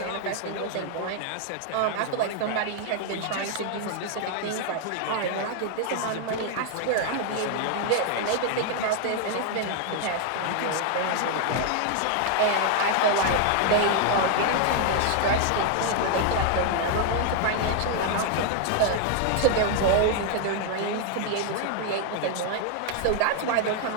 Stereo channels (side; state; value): both; different; correlation 0.00